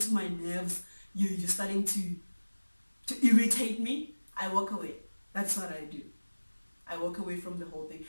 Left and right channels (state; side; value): inverted; both; correlation -1.00